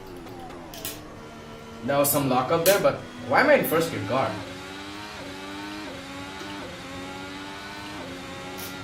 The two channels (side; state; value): both; identical; correlation 1.00